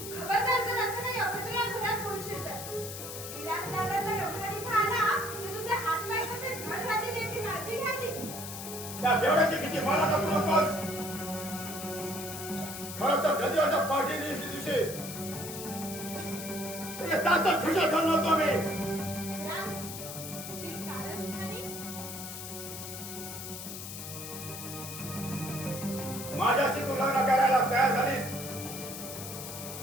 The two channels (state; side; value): noise; left; hiss, 9 dB below the sound